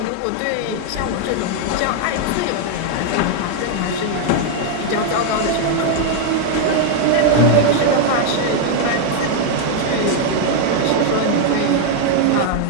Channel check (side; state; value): both; different; correlation 0.00